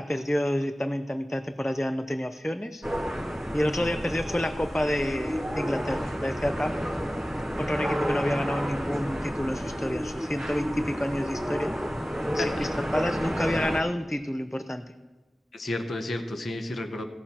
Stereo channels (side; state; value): both; normal; correlation 0.96